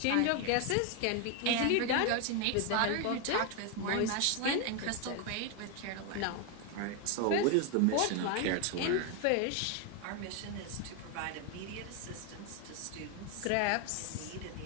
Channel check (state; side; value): different; both; correlation 0.01